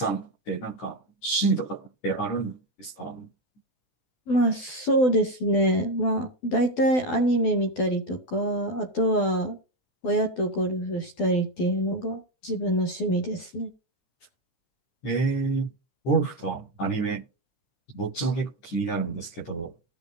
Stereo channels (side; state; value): right; late; 12 ms